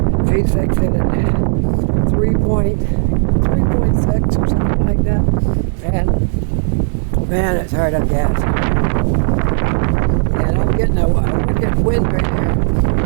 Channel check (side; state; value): left; silent; 56 dB below the other